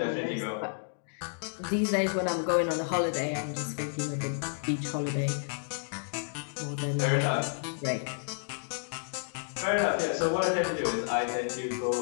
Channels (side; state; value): right; silent; digital silence